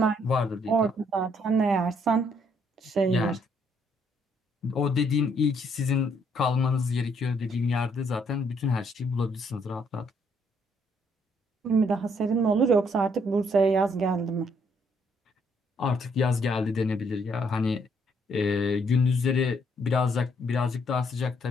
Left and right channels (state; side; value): normal; both; correlation 0.69